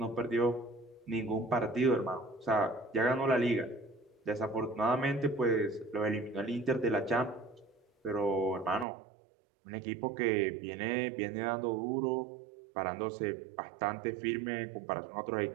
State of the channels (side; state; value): left; drops out; at 8.8 s